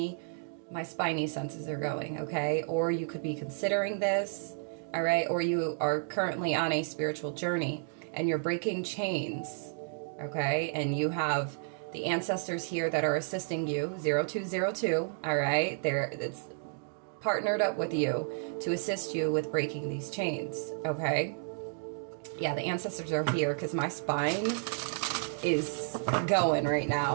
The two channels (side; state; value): left; silent; digital silence